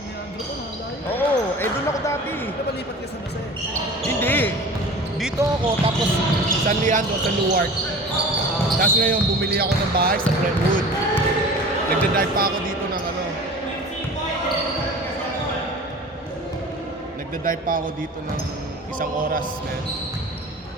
ko, malayo. Oo, eh doon ako dati. Napalipat ka sa Mase. Hindi. Dito ako, tapos San Leandro, sa Newark. Tapos ngayon, bumili ako ng bahay sa Brentwood. Nagda-drive pa ako dito ng ano. Nagda-drive pa ako dito ng isang oras, man.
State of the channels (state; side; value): normal; both; correlation 0.39